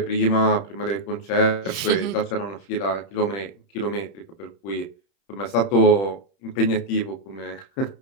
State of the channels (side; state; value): right; late; 30 ms